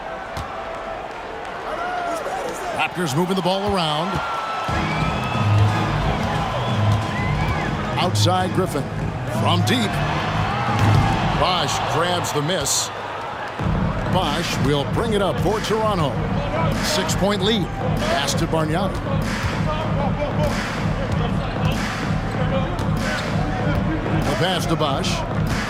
Raptors moving the ball around. Outside Griffin. From deep. Bosch grabs the miss. Bosch will bring it up for Toronto. 6-point lead. Pass to Bargnani. The pass to Bosch.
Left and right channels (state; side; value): identical; both; correlation 1.00